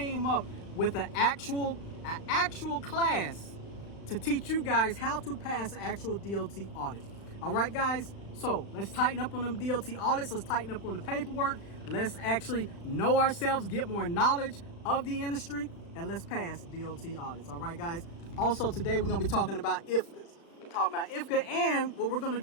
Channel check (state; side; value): late; right; 35 ms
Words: up with an actual class to teach you guys how to pass an actual DOT audit. All right, guys? So let's tighten up on them DOT audits. Let's tighten up on the paperwork. Let's actually know ourselves, get more knowledge of the industry, and let's pass DOT audits. All right, guys? Also, today we're going to be talking about IFCAs. And what we're going to